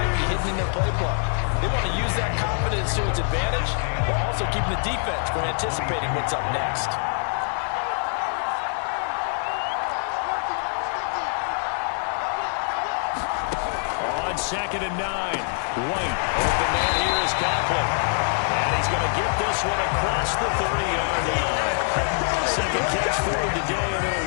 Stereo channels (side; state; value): right; silent; 62 dB below the other